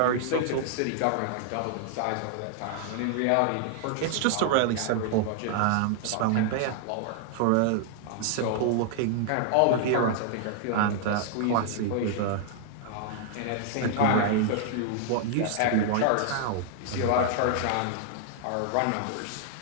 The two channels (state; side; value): different; both; correlation -0.01